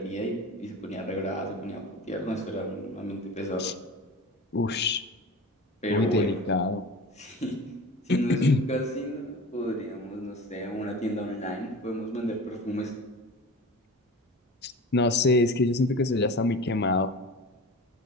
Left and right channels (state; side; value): normal; both; correlation 0.35